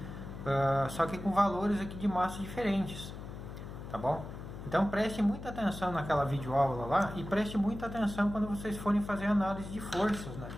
só que com valores aqui de massa diferentes, tá bom? Então preste muita atenção naquela videoaula lá e preste muita atenção quando vocês forem fazer análise de forças, né?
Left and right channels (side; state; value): left; noise; hum, 10 dB below the sound